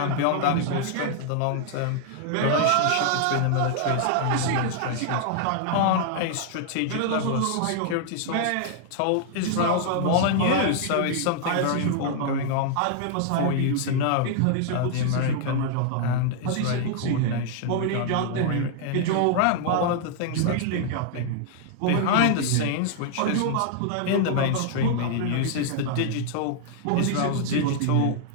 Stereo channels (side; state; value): both; different; correlation 0.00